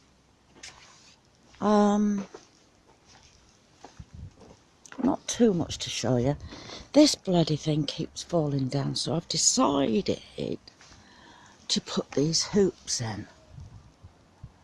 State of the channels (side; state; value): both; identical; correlation 1.00